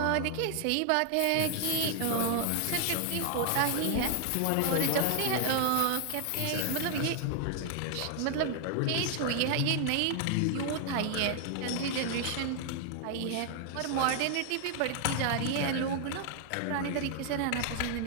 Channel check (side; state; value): both; different; correlation 0.00